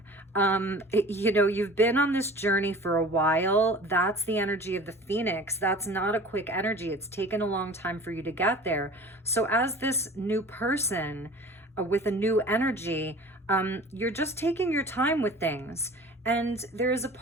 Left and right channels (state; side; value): normal; both; correlation 0.42